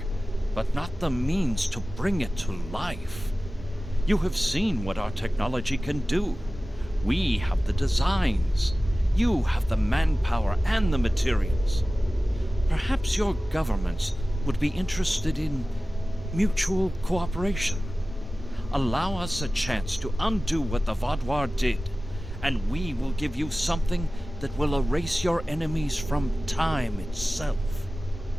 but not the means to bring it to life. You have seen what our technology can do. We have the designs. You have the manpower and the materials. Perhaps your governments would be interested in mutual cooperation. Allow us a chance to undo what the Vaudouar did, and we will give you something that will erase your enemies from time itself.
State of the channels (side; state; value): both; normal; correlation 0.96